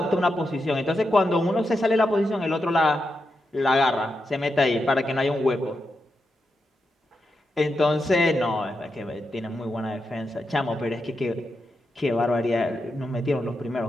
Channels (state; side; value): normal; both; correlation 0.86